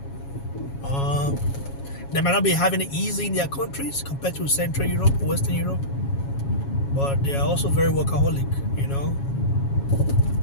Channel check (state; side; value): late; right; 7.3 ms